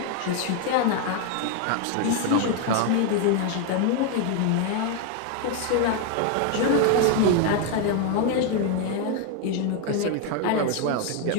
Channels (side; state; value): both; different; correlation 0.01